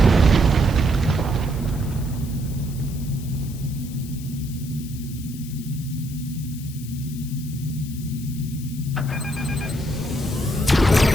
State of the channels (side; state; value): left; noise; hiss, 17 dB below the sound